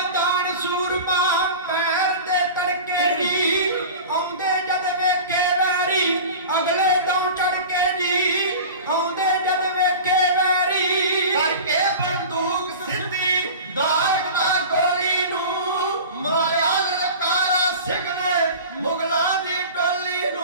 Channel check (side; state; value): both; inverted; correlation -0.35